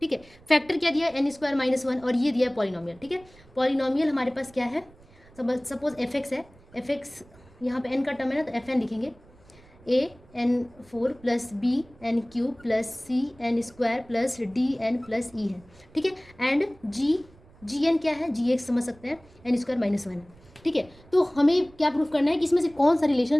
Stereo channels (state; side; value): noise; right; rumble, 26 dB below the sound